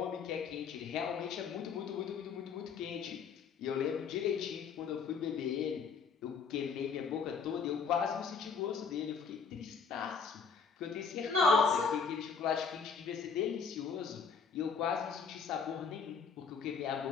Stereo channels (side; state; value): right; quieter; 5.6 dB